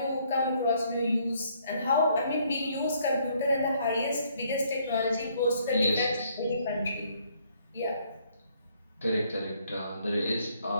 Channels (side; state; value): both; inverted; correlation -0.67